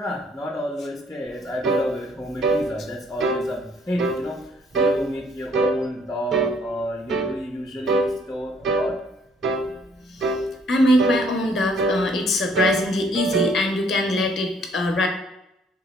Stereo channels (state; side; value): normal; both; correlation 0.64